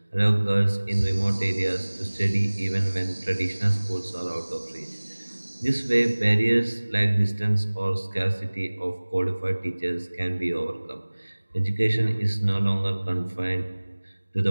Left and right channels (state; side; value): inverted; both; correlation -1.00